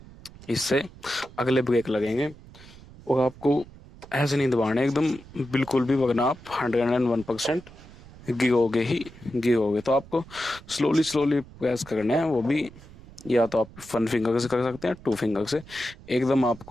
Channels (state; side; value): noise; right; rumble, 20 dB below the sound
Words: इससे अगले ब्रेक लगेंगे। और आपको ऐसे नहीं दबाना एकदम बिल्कुल भी, वरना आप 101% गिरोगे। तो आपको स्लोली स्लोली प्रेस करना है, वो भी या तो आप 1 फिंगर से कर सकते हैं, 2 फिंगर से। एकदम